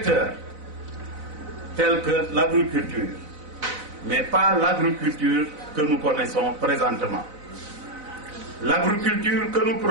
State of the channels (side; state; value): left; late; 4.0 ms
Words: tels que l'agriculture, mais pas l'agriculture que nous connaissons présentement. L'agriculture que nous